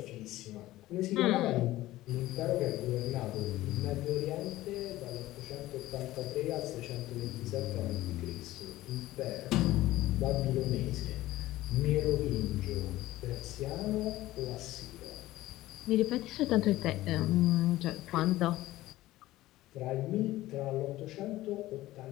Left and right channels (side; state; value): right; quieter; 16.4 dB